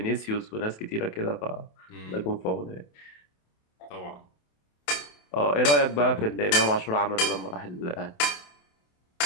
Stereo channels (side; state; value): right; late; 28 ms